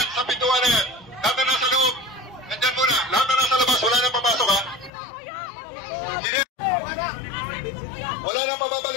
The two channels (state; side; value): drops out; right; at 4.9 s